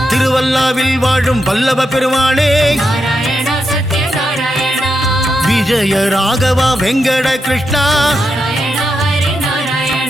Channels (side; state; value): both; normal; correlation 0.85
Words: திருவல்லாவில் வாழும் வல்லப பெருமாளே நாராயண சத்ய நாராயண விஜய ராகவா வெங்கட கிருஷ்ணா நாராயண ஹரி